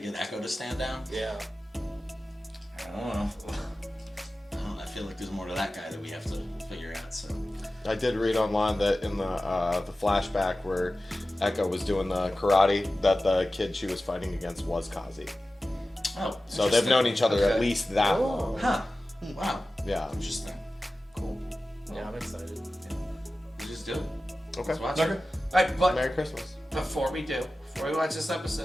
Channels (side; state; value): both; normal; correlation 0.95